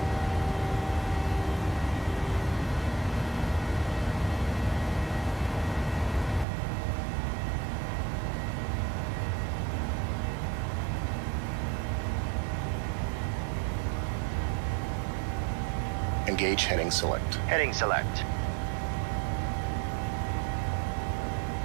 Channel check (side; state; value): left; drops out; at 6.5 s